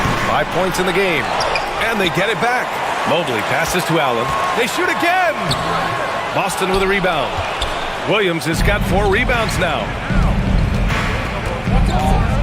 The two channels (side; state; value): both; identical; correlation 1.00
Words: 5 points in the game. And they get it back. Mobley passes to Allen. They shoot again. Boston with a rebound. Williams has got 4 rebounds now.